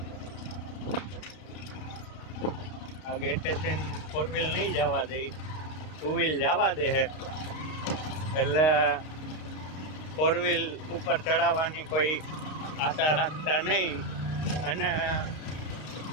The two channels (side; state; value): right; late; 32 ms